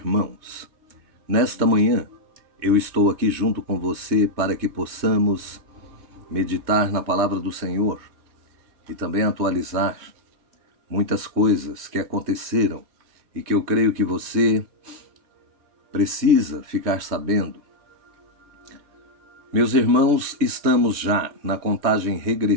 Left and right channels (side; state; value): left; late; 3.2 ms